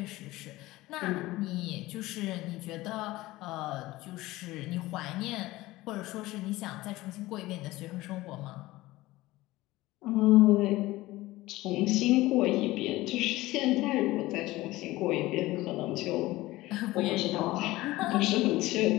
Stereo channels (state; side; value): quieter; right; 18.4 dB